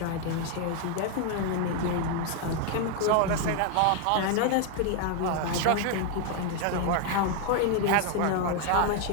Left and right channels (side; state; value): both; different; correlation 0.01